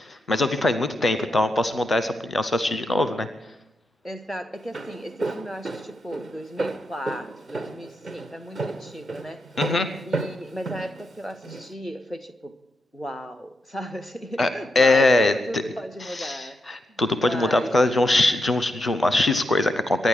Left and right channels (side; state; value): both; normal; correlation 0.85